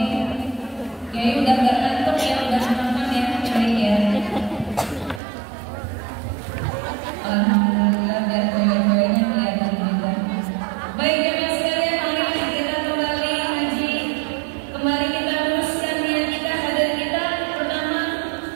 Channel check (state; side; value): drops out; left; at 5.2 s